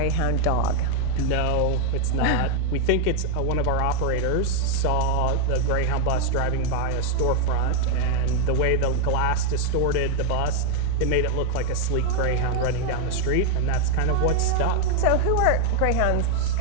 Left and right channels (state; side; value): different; both; correlation 0.01